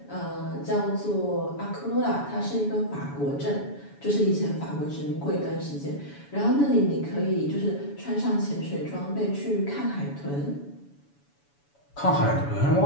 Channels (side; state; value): right; late; 7.1 ms